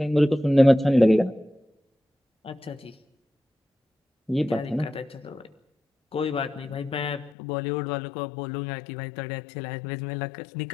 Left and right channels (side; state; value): right; drops out; at 7.3 s